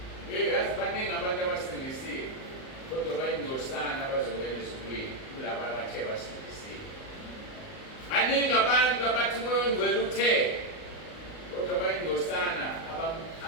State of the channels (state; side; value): late; right; 38 ms